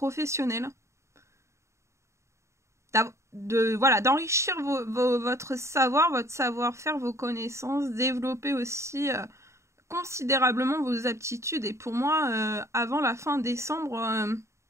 D'enrichir votre savoir, votre savoir-faire, vos connaissances, développer aussi considérablement vos aptitudes. Et pour moi, avant la fin décembre,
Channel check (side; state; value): left; late; 0.14 ms